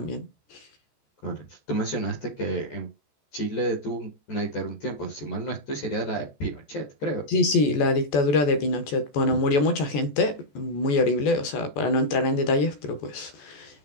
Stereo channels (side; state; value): right; late; 14 ms